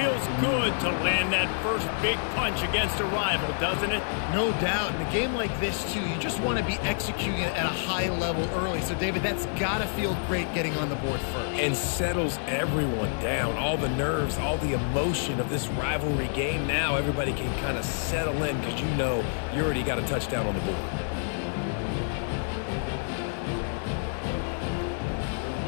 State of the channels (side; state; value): right; silent; 56 dB below the other